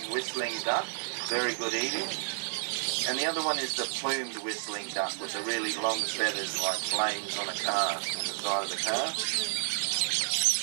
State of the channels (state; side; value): silent; left; digital silence